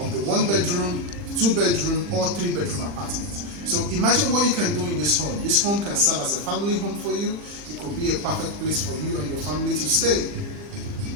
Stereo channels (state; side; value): late; left; 40 ms